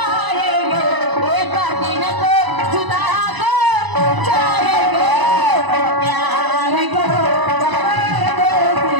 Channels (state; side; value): late; left; 1.0 ms